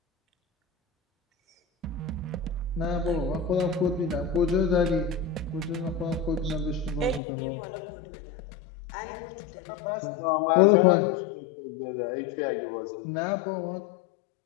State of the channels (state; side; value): drops out; right; at 7.2 s